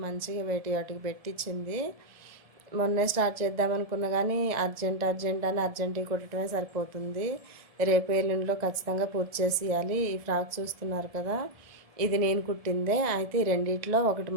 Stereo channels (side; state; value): left; late; 1.7 ms